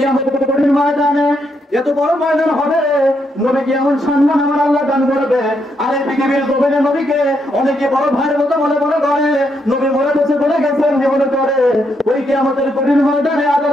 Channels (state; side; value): normal; both; correlation 0.78